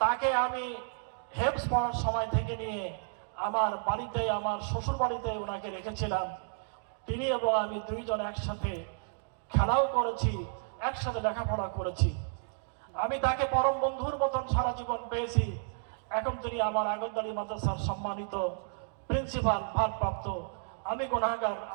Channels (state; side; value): silent; left; digital silence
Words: আমি হেফজ পড়ার সময় থেকে নিয়ে আমার বাড়িতে, আমার শ্বশুর বাড়িতে ওনাকে রেখেছিলাম। তিনি এবং আমি দুইজন একসাথে খেলাও করেছি, একসাথে লেখাপড়া করেছি। আমি তাকে পরম বন্ধুর মতন সারা জীবন পেয়েছি। এখন তিনি আমার আগরতলী মাদ্রাসার সম্মানিত প্রিন্সিপাল, ভারপ্রাপ্ত। আমি গুনাহগার,